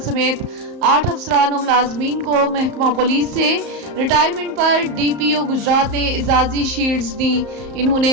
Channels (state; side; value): late; left; 34 ms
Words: سمیت 8 افسران و ملازمین کو محکمہ پولیس سے ریٹائرمنٹ پر ڈی پی او گجرات نے اعزازی شیلڈز دیں۔ انہوں